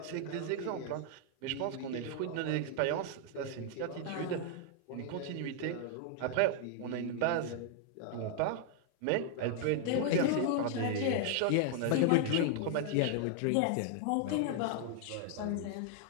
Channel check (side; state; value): both; different; correlation 0.00